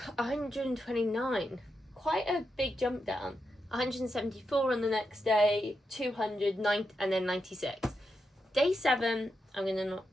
Quite a big jump down. 174 on the next day, 209, and then 96. Day 7, I'm going to not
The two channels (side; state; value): both; normal; correlation 0.85